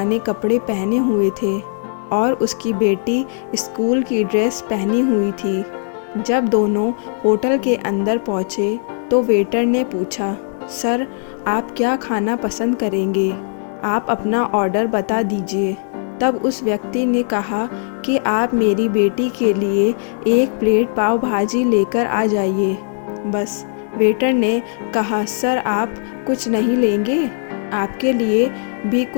कपड़े पहने हुए थे और उसकी बेटी स्कूल की ड्रेस पहनी हुई थी। जब दोनों होटल के अंदर पहुंचे तो वेटर ने पूछा, सर, आप क्या खाना पसंद करेंगे? आप अपना ऑर्डर बता दीजिए। तब उस व्यक्ति ने कहा कि आप मेरी बेटी के लिए एक प्लेट पाव भाजी लेकर आ जाइए। बस। वेटर ने कहा, सर, आप कुछ नहीं लेंगे? आपके लिए भी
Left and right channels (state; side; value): silent; right; digital silence